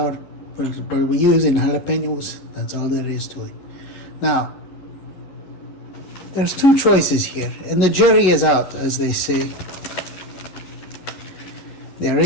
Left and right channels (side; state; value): right; late; 11 ms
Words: We're using jalapenos. That's all there is to it. Now, there's two choices here, and the jury is out, as they say. They're